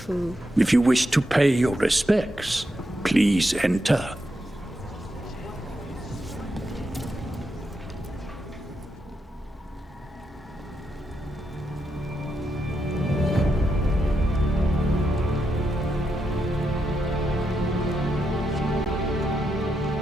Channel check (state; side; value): normal; both; correlation 0.84